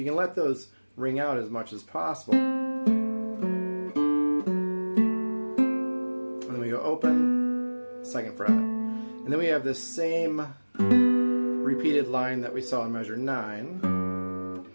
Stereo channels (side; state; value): both; inverted; correlation -1.00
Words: can let those ring out as much as possible. And then we go open, 2nd fret. And then we have this same repeated line that we saw in measure 9.